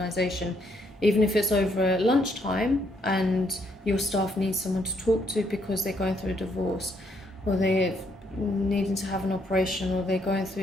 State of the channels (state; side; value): normal; both; correlation 0.71